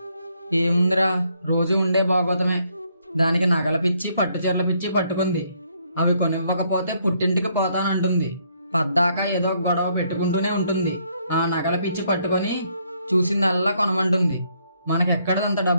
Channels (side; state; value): both; inverted; correlation -0.71